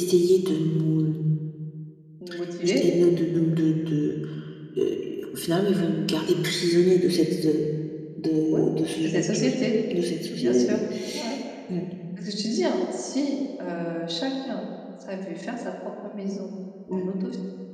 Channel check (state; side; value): identical; both; correlation 1.00